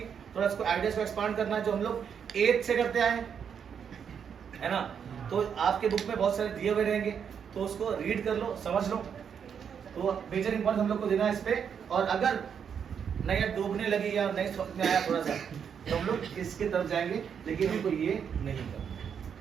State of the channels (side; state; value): left; quieter; 7.5 dB